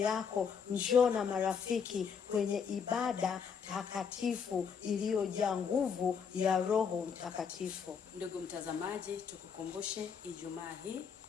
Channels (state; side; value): quieter; right; 6.6 dB